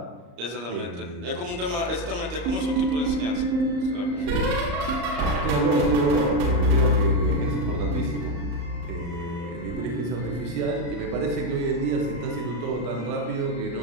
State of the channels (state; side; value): late; left; 34 ms